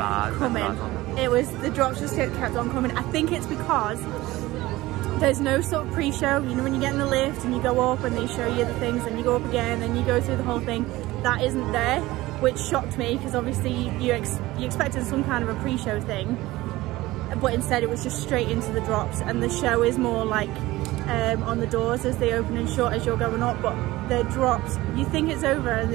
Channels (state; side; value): quieter; left; 18.3 dB